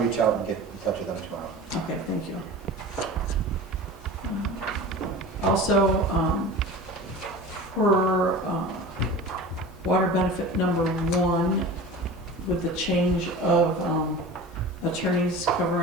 out and get in touch with them tomorrow. Okay, thank you. Also, for water benefit number 1, with the change of attorneys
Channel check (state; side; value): normal; both; correlation 0.35